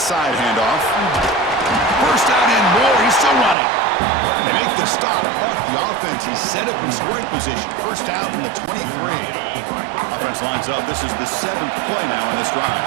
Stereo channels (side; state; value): left; drops out; at 3.6 s